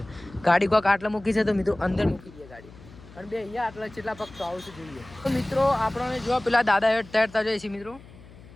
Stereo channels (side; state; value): left; noise; hum, 21 dB below the sound